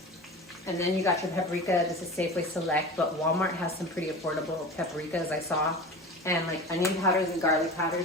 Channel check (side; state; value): both; normal; correlation 0.33